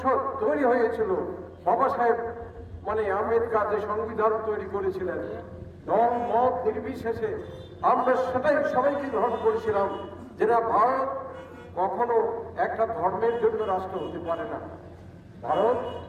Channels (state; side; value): identical; both; correlation 1.00